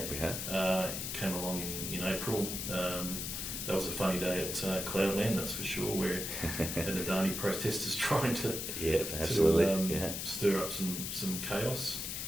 we have. It came along in April. That was a funny day at Cloudland, that's for sure, where an Adani protesters trying to stir up some chaos.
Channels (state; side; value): noise; left; hiss, 4 dB below the sound